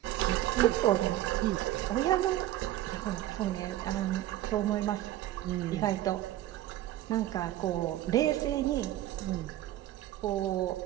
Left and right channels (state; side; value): quieter; left; 14.2 dB